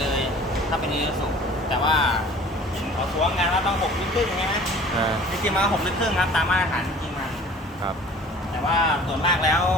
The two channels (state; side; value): normal; both; correlation 0.47